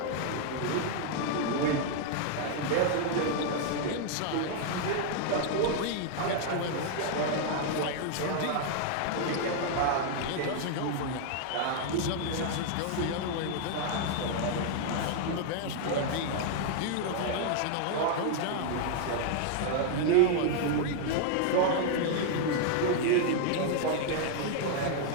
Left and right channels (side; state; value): both; different; correlation 0.00